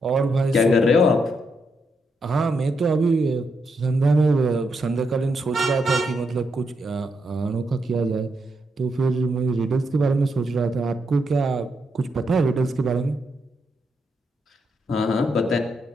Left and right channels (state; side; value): normal; both; correlation 0.81